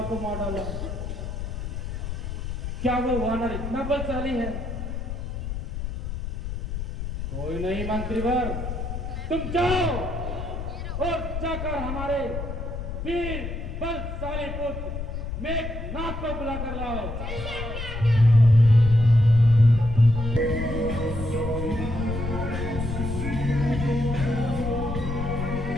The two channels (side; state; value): left; noise; rumble, 5 dB below the sound